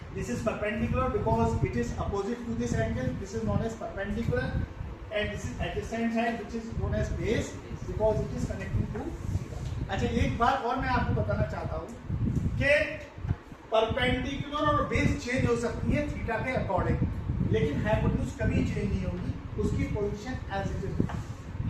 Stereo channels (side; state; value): both; identical; correlation 1.00